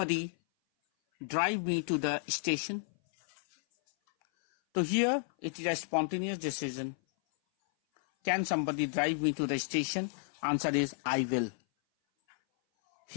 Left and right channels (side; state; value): right; silent; 56 dB below the other